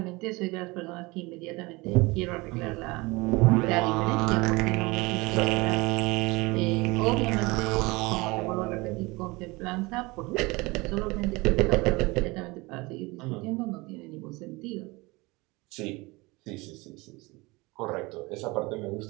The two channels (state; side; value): quieter; left; 23.8 dB